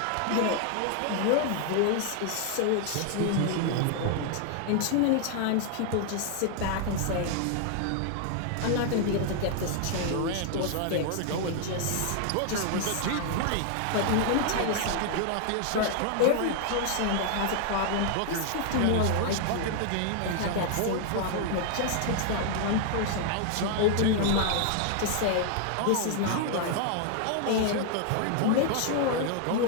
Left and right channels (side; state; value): both; different; correlation 0.00